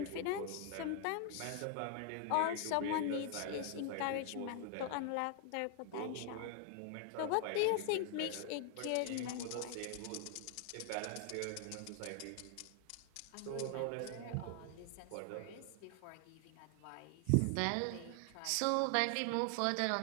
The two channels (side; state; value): both; different; correlation 0.00